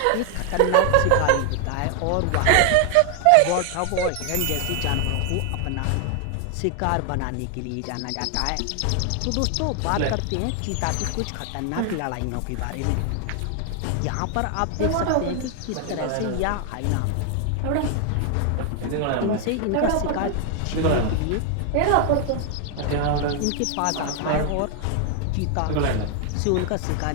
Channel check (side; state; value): both; different; correlation 0.00